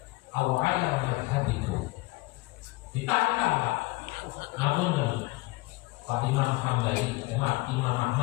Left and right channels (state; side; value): quieter; right; 22.9 dB